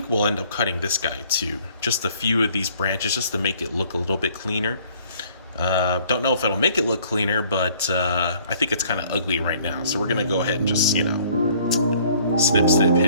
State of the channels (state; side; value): inverted; both; correlation -0.58